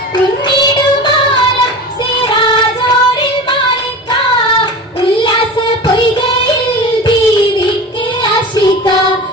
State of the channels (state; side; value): normal; both; correlation 0.32